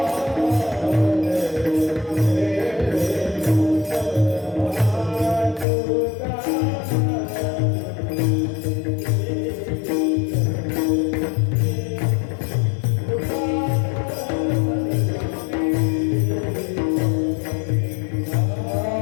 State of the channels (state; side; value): drops out; right; at 5.7 s